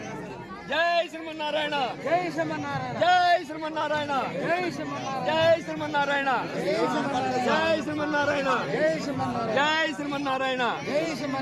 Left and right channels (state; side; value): identical; both; correlation 1.00